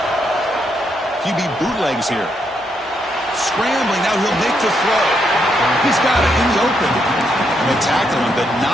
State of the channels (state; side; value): normal; both; correlation 0.78